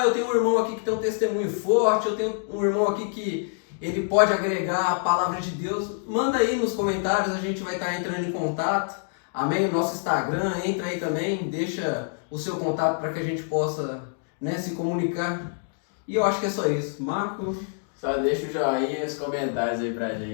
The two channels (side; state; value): right; silent; digital silence